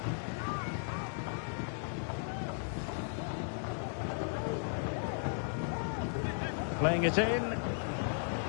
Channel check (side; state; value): right; silent; digital silence